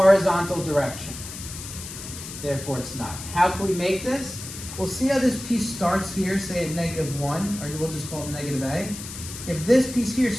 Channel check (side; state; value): left; noise; hiss, 11 dB below the sound